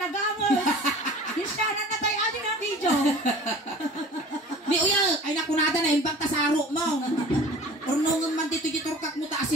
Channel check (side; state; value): both; normal; correlation 0.43